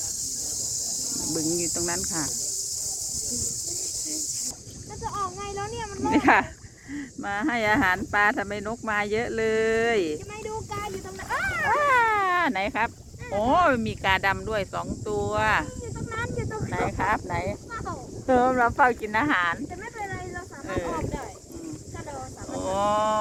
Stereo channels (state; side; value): identical; both; correlation 1.00